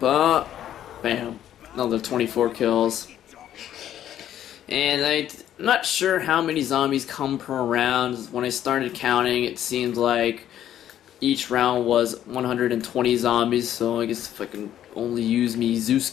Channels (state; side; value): quieter; right; 11.2 dB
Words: Bam. Another 24 kills. And I'm not sure how many zombies come per round. When I started counting, it seemed like each round was 120 zombies. So I guess if I can only use me Zeus